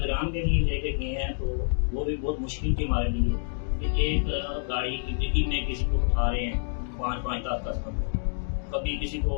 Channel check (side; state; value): right; silent; digital silence